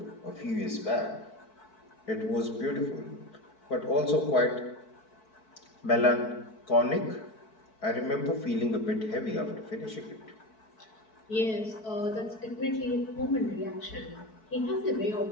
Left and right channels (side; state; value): right; late; 4.6 ms